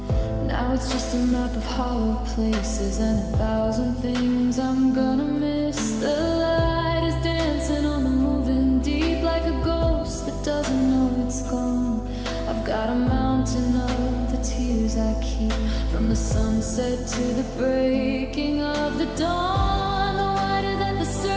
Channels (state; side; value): identical; both; correlation 1.00